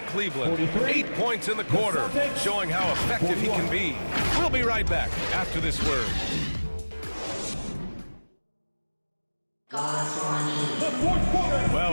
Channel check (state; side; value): inverted; both; correlation -1.00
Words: Cleveland. 8 points in the quarter, showing how effective he can be. We'll be right back after this word.